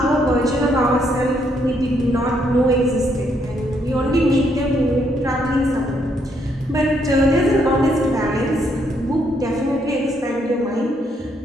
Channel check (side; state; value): both; normal; correlation 0.73